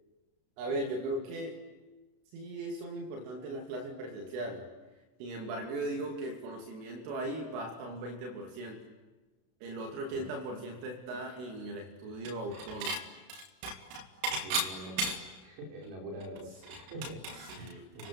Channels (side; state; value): left; late; 32 ms